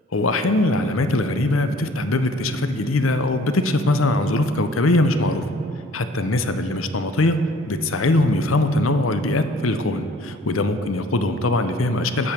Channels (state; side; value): normal; both; correlation 0.54